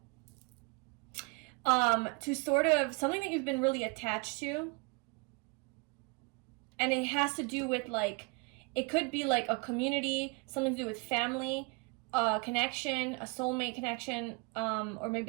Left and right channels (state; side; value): quieter; left; 30.4 dB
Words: To sort of, something that you've been really attached to. And it has to do with, like, it could be, like, a community, something to do with family, a connection, a soulmate connection, or